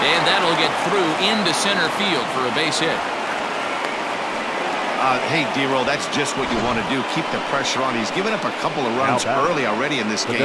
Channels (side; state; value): both; identical; correlation 1.00